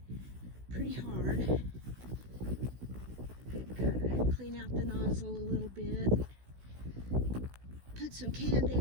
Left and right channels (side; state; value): left; late; 16 ms